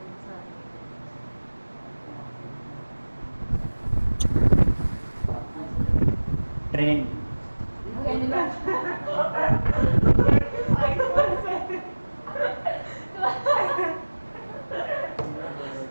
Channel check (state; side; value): inverted; both; correlation -1.00